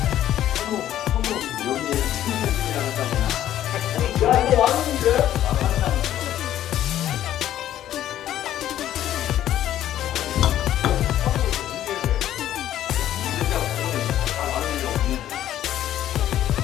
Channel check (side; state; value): right; quieter; 12.1 dB